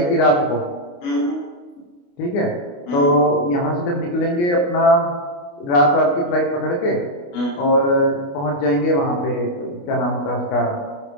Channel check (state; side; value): late; right; 28 ms